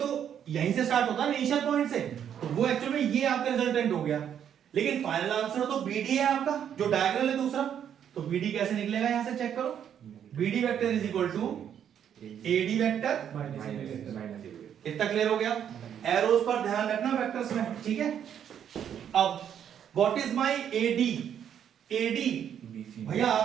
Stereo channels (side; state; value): left; quieter; 9.1 dB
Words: यहीं से स्टार्ट होता है इनिशियल पॉइंट से, तो वो एक्चुअली में ये आपका रिजल्टेंट हो गया। लेकिन फाइनल आंसर तो BD है आपका, जो डायगोनल है दूसरा। तो BD कैसे निकलेगा, यहां से चेक करो। BD vector is equal to AD vector minus. इतना क्लियर हो गया। एरोस पर ध्यान रखना वेक्टर्स में, ठीक है। अब व्हाट इज माय AD भैया